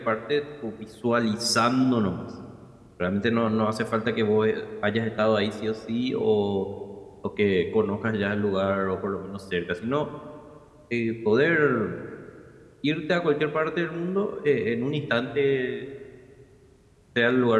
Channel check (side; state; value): both; identical; correlation 1.00